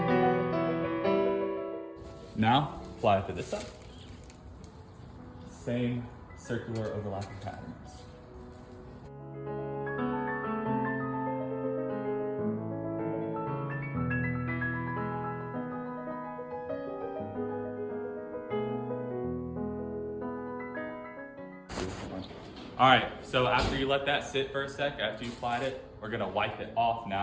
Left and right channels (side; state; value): both; identical; correlation 1.00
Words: Now, apply it to this side. Same circular overlapping patterns. All right, so after you let that sit for a sec, after you applied it, we're gonna wipe it off